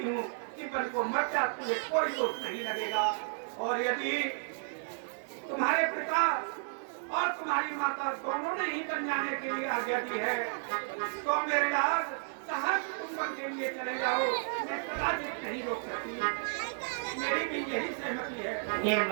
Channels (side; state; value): left; silent; 56 dB below the other